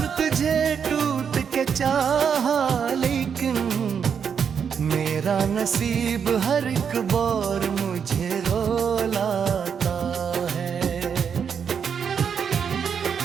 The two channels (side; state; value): left; quieter; 7.1 dB